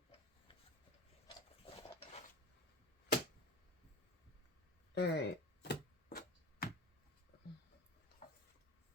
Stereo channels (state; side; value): normal; both; correlation 0.31